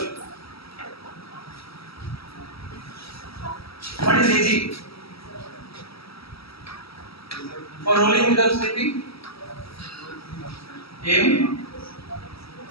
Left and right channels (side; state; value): right; late; 0.76 ms